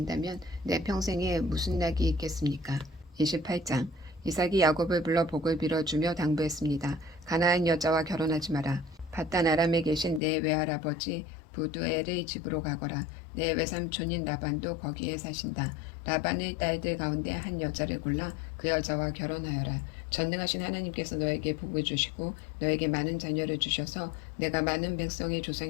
내 평생에 무슨 낙이 있겠습니까? 28장. 이삭이 야곱을 불러 복을 빌어주며 당부했습니다. 가나안 여자와 결혼하지 마라. 밧단 아람에 계신 내 외할아버지 부두엘의 집으로 가거라. 내 외삼촌인 라반도 거기에 사신다. 라반의 딸들 가운데 한 여자를 골라 그 여자와 결혼하여라. 전능하신 하나님께서 너에게 복을 주시고 너에게 많은 자녀를 주셔서 내가 많은 백성의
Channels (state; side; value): drops out; right; at 10.2 s